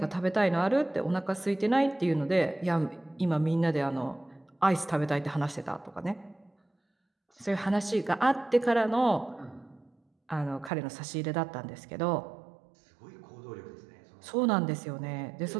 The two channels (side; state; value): left; drops out; at 10.7 s